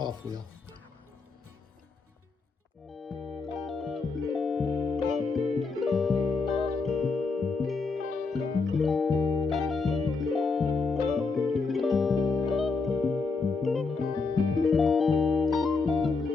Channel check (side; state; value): right; quieter; 4.3 dB